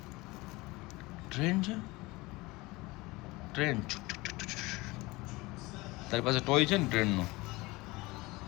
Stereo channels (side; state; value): right; quieter; 22.2 dB